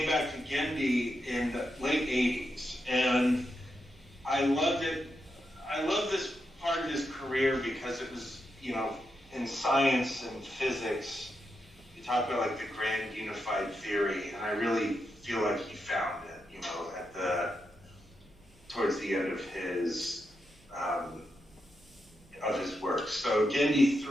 back to Gendy in the late 80s, and I loved it. I love this part of his career because it was, in science and physics, you talk about like the grand unified theory, and I really feel like he found it, towards the end of his work. So Gendy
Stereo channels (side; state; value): both; normal; correlation 0.85